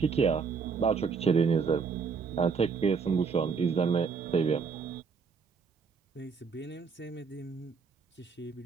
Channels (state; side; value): quieter; left; 5.4 dB